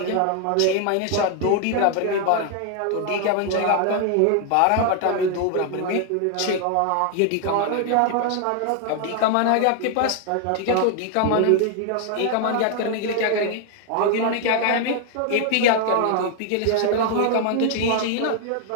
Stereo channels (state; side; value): different; both; correlation 0.00